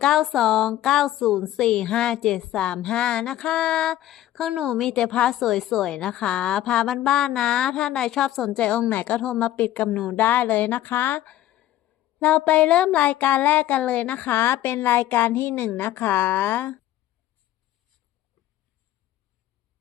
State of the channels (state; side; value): quieter; right; 13.4 dB